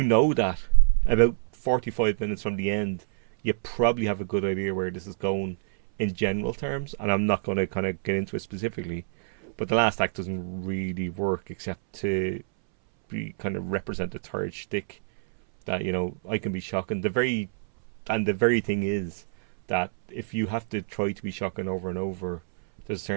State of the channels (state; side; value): silent; left; 60 dB below the other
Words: know that about 45 minutes from the end, you probably have a good idea where this is going in general terms. And I'm not going to kind of get into it specifically, but the last act doesn't really work except to be kind of represent the third shtick. That, you know, I can be shocking. The very thing is that if you have to try to be shocking over and over, there's a